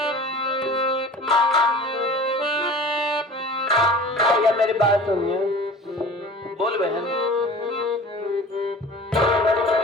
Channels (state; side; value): normal; both; correlation 0.41